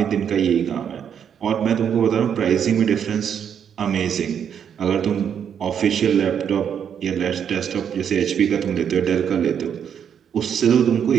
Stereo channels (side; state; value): left; quieter; 8.2 dB